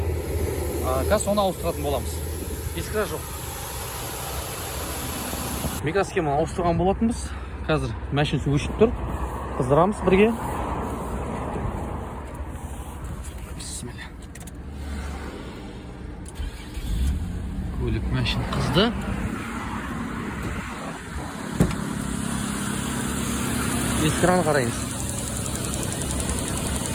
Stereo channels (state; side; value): identical; both; correlation 1.00